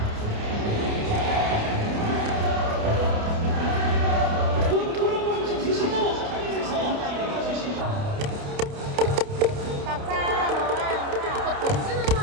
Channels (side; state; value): left; late; 29 ms